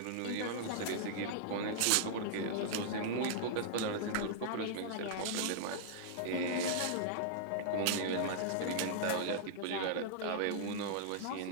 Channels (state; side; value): different; both; correlation -0.01